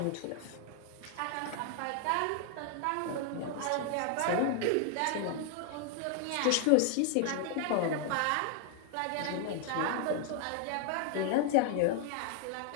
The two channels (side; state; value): both; different; correlation 0.00